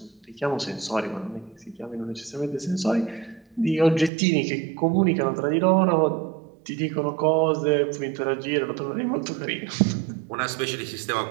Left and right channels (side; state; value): left; drops out; at 4.1 s